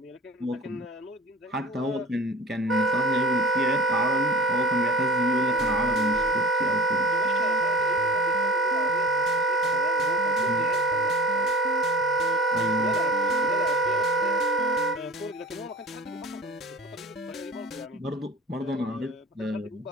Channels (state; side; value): normal; both; correlation 0.39